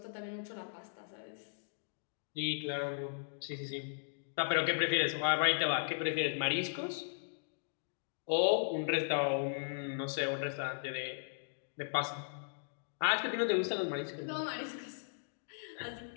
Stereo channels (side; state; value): right; silent; digital silence